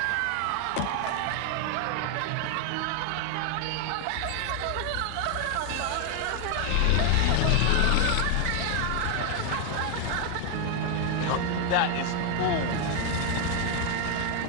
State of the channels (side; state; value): both; different; correlation 0.01